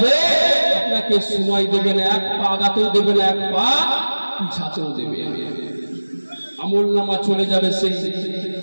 আপনাকে সময় দেবে না, এক পা আগাতেও দেবে না, এক পা পিছাতেও দেবে না। আমলনামা চলে যাবে সেই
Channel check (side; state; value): both; inverted; correlation -1.00